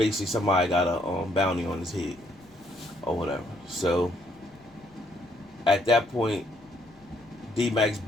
somebody got a bounty on his head or whatever. So at that point, D-Mac's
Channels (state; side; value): noise; left; rumble, 28 dB below the sound